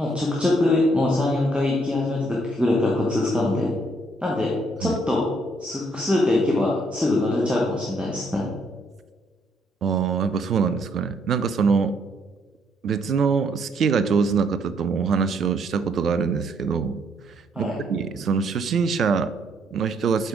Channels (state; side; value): normal; both; correlation 0.70